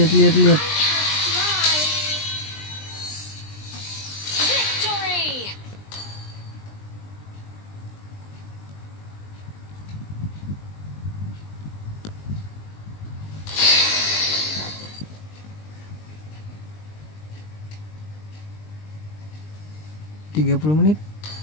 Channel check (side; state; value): right; late; 20 ms